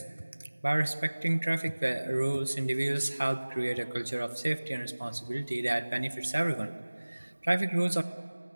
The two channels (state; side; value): inverted; both; correlation -1.00